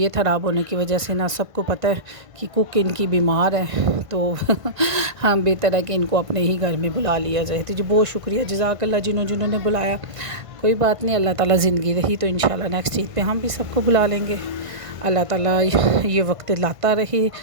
خراب ہونے کی وجہ سے نا سب کو پتہ ہے کہ کک ان کی بیمار ہے، تو ہم بہتر ہے کہ ان کو اپنے ہی گھر میں بلا لیا جائے۔ تو جی بہت شکریہ، جزاک اللہ جنہوں نے بلایا۔ کوئی بات نہیں، اللہ تعالیٰ زندگی رہی تو انشاءاللہ نیکسٹ عید پہ ہم بھی سب کو بلا لیں گے۔ اللہ تعالیٰ یہ وقت لاتا رہے،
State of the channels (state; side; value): late; left; 1.5 ms